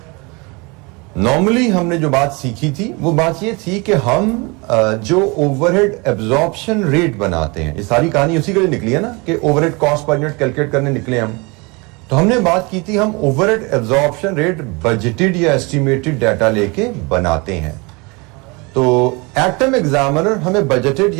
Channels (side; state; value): left; quieter; 27.9 dB